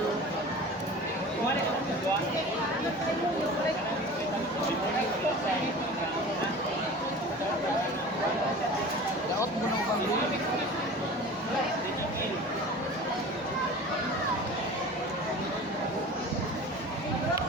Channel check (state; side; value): noise; left; hum, 29 dB below the sound